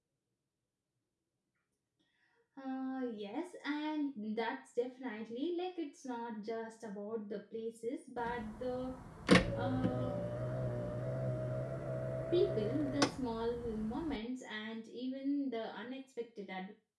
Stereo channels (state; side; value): identical; both; correlation 1.00